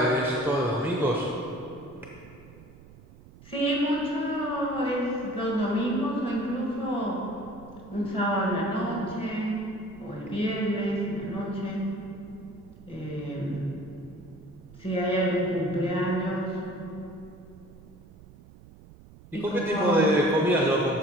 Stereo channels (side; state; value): right; noise; rumble, 21 dB below the sound